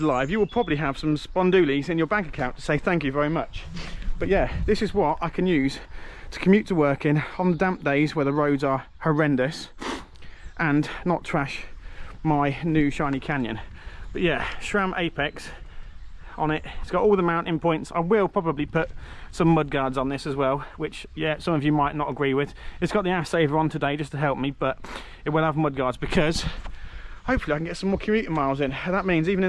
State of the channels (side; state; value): both; identical; correlation 1.00